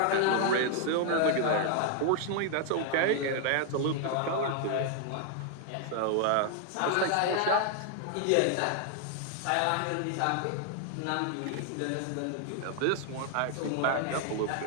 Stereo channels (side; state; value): both; different; correlation 0.00